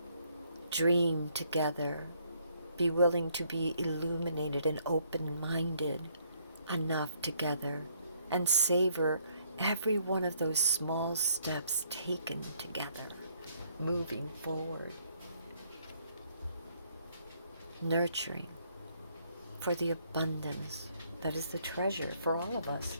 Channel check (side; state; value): both; inverted; correlation -0.69